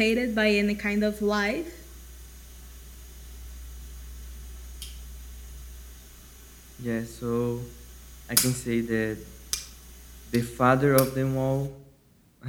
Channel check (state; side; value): identical; both; correlation 1.00